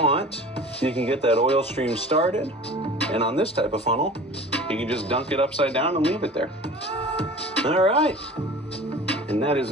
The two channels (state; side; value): normal; both; correlation 0.41